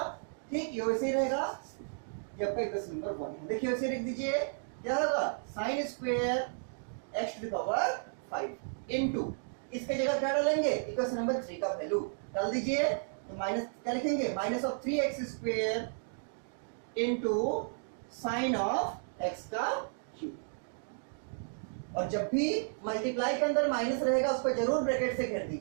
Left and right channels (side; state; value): left; silent; digital silence